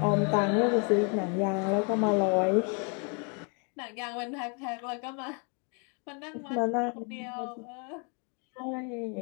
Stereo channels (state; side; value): quieter; right; 36.9 dB